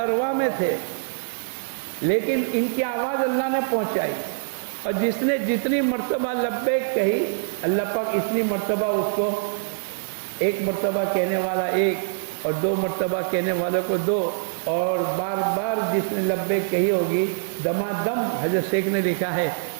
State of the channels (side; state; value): left; silent; digital silence